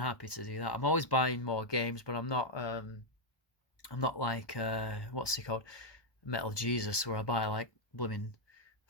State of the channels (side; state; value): right; late; 1.1 ms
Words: to do that. I'm always buying more games, but I'm not like what's he called, Metal Jesus, where I buy like blooming